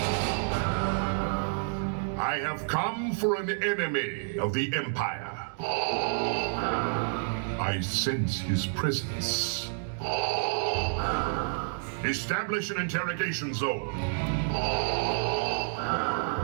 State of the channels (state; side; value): silent; left; digital silence